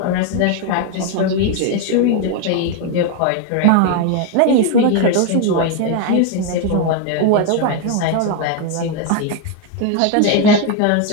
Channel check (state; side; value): different; both; correlation 0.01